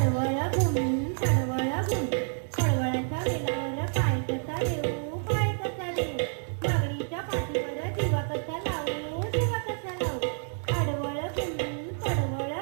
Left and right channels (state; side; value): silent; left; 59 dB below the other